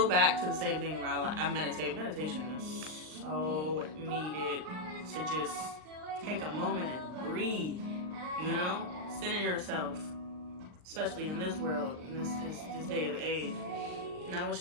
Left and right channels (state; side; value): late; left; 39 ms